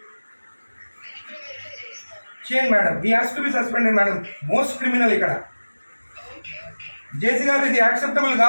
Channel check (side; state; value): both; inverted; correlation -1.00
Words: చేయండి madam. He has to be suspended madam. Most criminal ఇక్కడ. జేసీ గారు, ఇది యాక్సెప్టబుల్